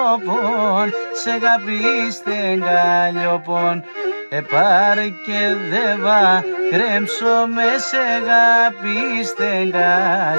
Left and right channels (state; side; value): inverted; both; correlation -1.00